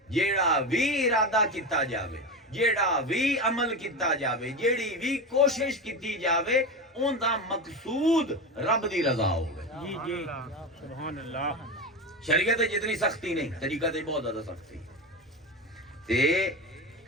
جیڑا بھی ارادہ کیتا جاوے جیڑا بھی عمل کیتا جاوے جیڑی بھی کوشش کیتی جاوے ان دا مقصود رب دی رضا ہوگی جی جی سبحان اللہ شریعت جتنی سختی نہیں طریقت بہت زیادہ سختی تے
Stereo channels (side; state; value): both; normal; correlation 0.20